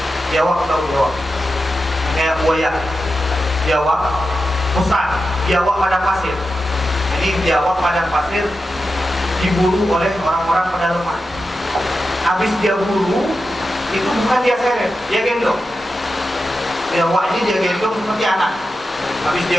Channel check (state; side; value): normal; both; correlation 0.91